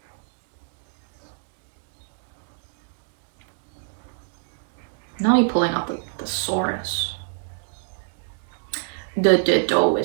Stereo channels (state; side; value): silent; left; digital silence